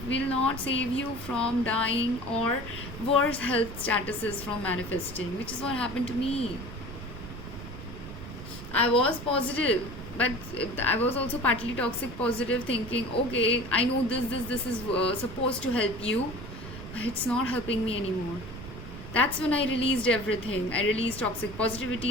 will not save you from dying or worse health statuses from manifesting, which is what happened to me. I was positive, but I was also partly toxic positive, thinking, okay, I know this is supposed to help you, but it's not helping me anymore. That's when I released everything. I released toxic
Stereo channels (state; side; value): noise; right; rumble, 12 dB below the sound